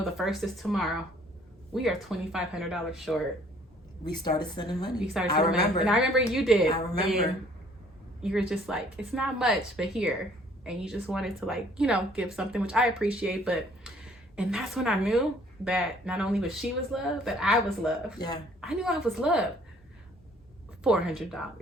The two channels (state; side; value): normal; both; correlation 0.58